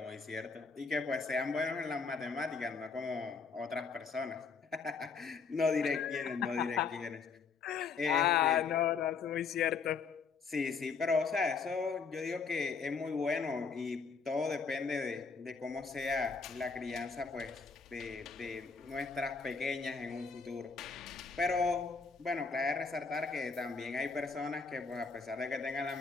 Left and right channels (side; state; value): right; quieter; 5.1 dB